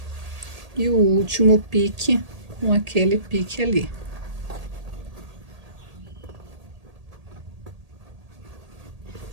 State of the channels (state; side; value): late; left; 1.8 ms